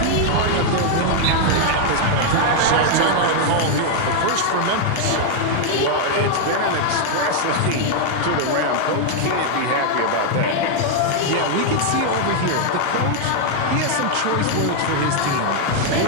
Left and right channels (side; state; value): both; different; correlation 0.00